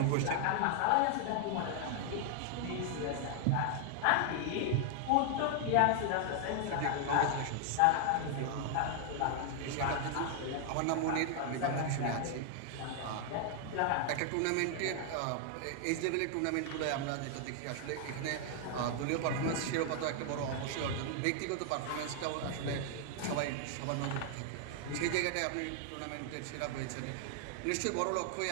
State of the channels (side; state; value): both; different; correlation 0.00